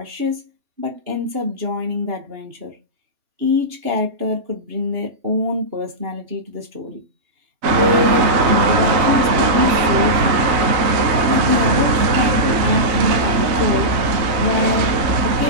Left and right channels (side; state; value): left; late; 3.2 ms